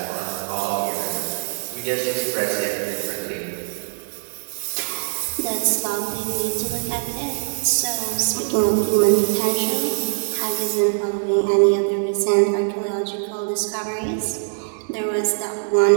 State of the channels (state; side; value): silent; left; 64 dB below the other